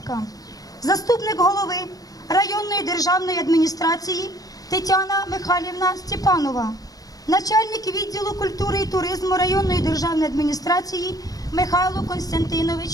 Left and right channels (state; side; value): late; right; 0.18 ms